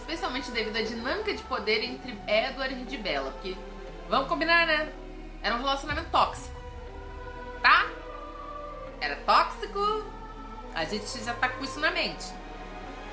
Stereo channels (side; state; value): both; identical; correlation 1.00